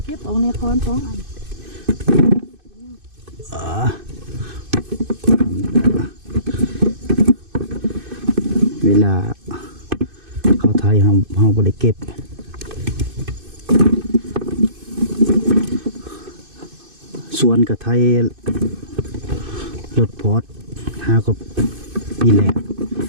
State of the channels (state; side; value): late; left; 2.6 ms